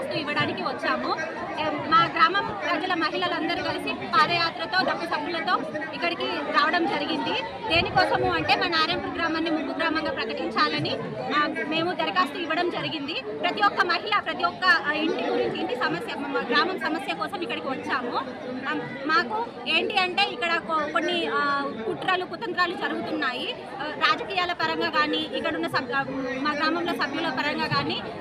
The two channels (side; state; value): both; identical; correlation 1.00